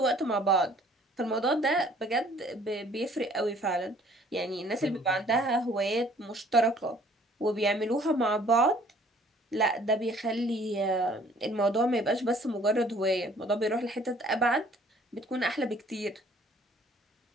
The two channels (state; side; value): normal; both; correlation 0.57